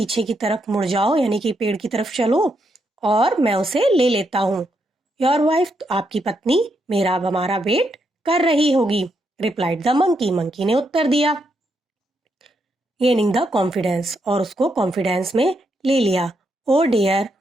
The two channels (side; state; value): both; normal; correlation 0.79